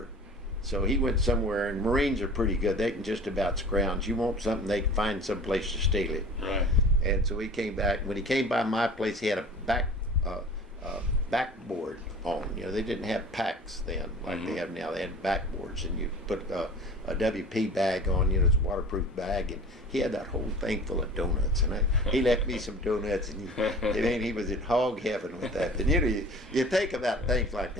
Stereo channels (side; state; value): both; normal; correlation 0.41